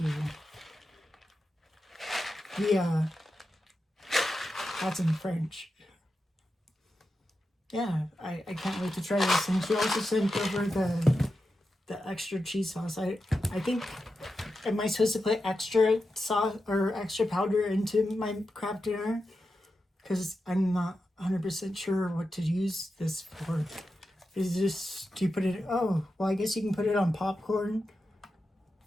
That's in French. Yeah, I can't wait to try this. And she also sent over the extra cheese sauce. I think am I supposed to put extra sauce or extra powder into my Kraft dinner? Because I'm not 100% sure what to use this for. Is this, do you put it, oh, well, I guess you can put it on popcorn,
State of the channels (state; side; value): normal; both; correlation 0.89